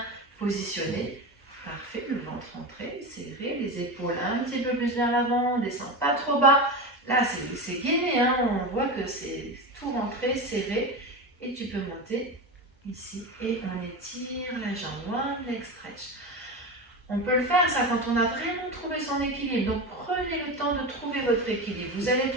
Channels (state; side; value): normal; both; correlation 0.22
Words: positionné. Parfait, le ventre rentré, serré, les épaules un petit peu plus vers l'avant, on ne descend pas trop bas. Là, c'est gainé, hein, on voit que c'est tout rentré, serré. Et tu peux monter ici et on étire la jambe, one leg stretch. On peut le faire ça quand on a vraiment trouvé son équilibre. Donc prenez le temps de trouver votre équilibre. Vous allez